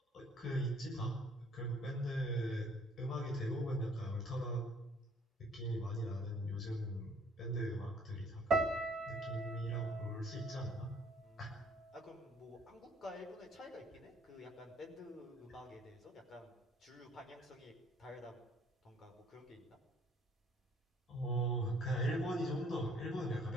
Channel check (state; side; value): normal; both; correlation 0.59